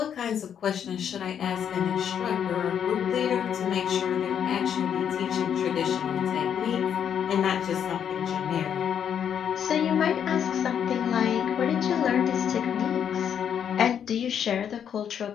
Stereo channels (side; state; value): right; quieter; 8.5 dB